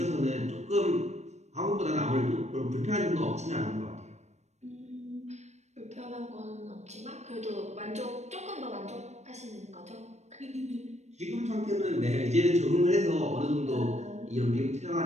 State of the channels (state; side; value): late; left; 0.33 ms